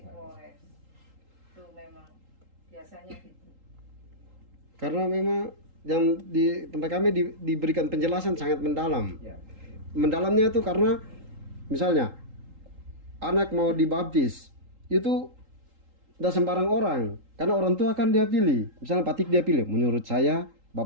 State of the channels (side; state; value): left; late; 3.8 ms